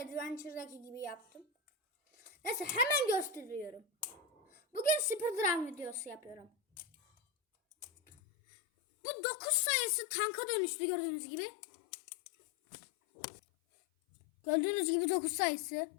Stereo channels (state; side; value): drops out; right; at 8.2 s